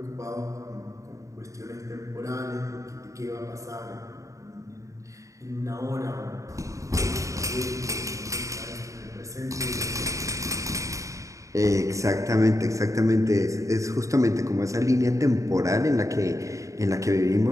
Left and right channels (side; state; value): left; late; 0.16 ms